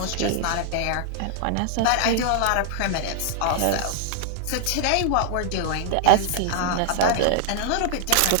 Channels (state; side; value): different; both; correlation 0.00